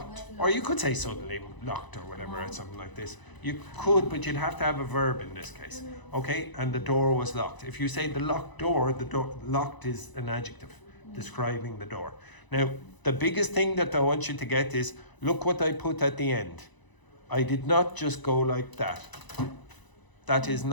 Or you could say suddenly locked or whatever, or something like this. You could, but you'd have to have a verb in this case. Okay, and the door was locked. If you say the locked door, locked is an adjective describing the door. Now, the biggest thing that I want you to get is, look what I put at the end. I did not just go like that. That is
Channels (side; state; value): right; late; 1.0 ms